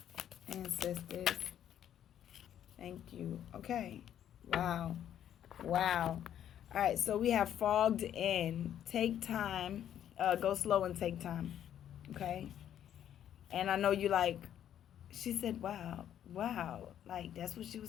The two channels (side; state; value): right; quieter; 10.4 dB